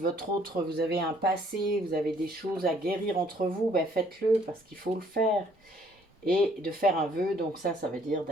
autre, vous avez un passé, vous avez des choses à guérir entre vous, faites-le parce qu'il faut le faire. Et de faire un vœu, donc ça veut dire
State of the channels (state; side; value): normal; both; correlation 0.63